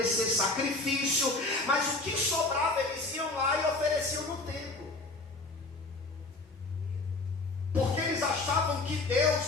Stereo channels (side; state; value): right; quieter; 3.2 dB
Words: sacrifício, mas o que sobrava eles iam lá e ofereciam no templo.